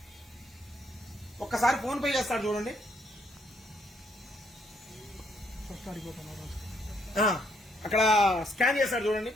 ఒక్కసారి ఫోన్ పే చేస్తాడు చూడండి. అక్కడ స్కాన్ చేస్తాడు చూడండి.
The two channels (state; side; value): normal; both; correlation 0.71